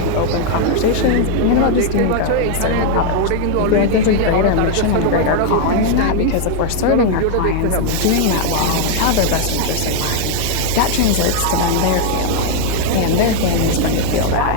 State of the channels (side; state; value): both; different; correlation 0.00